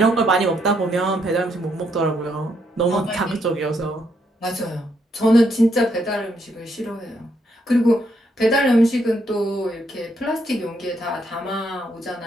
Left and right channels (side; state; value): both; normal; correlation 0.75